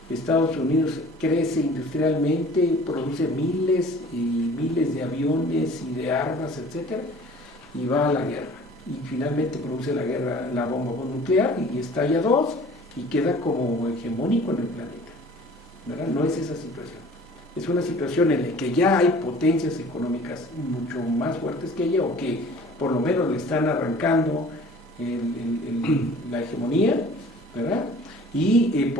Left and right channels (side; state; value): both; normal; correlation 0.48